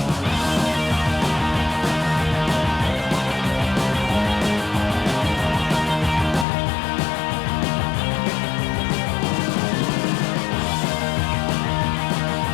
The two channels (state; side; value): drops out; right; at 6.5 s